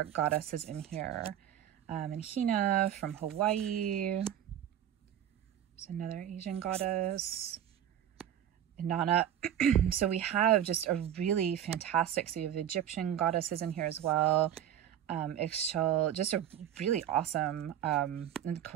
goddesses in here. And Hina from Hawaii. There's another Asian goddess. Inanna. So we have just a really fantastic, so you have Egyptian goddesses in here as well. Ixchel, just a really awesome, and of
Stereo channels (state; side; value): quieter; left; 10.6 dB